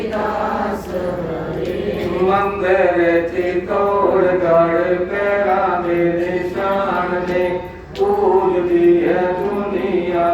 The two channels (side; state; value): both; identical; correlation 1.00